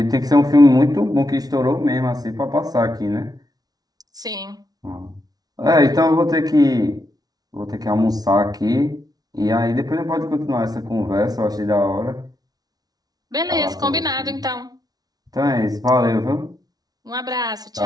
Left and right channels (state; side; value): late; left; 0.19 ms